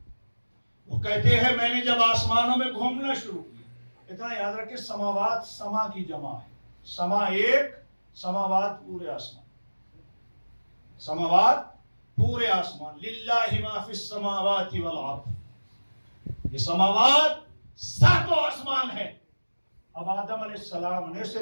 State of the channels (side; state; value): both; inverted; correlation -1.00